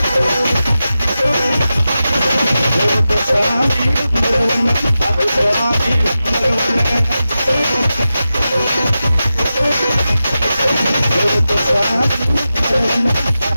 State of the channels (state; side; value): inverted; both; correlation -0.92